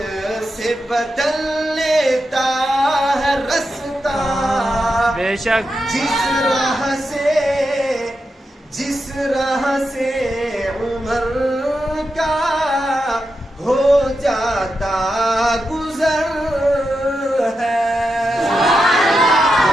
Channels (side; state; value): both; normal; correlation 0.87